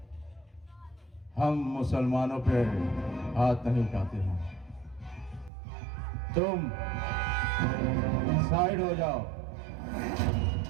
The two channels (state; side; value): drops out; left; at 5.5 s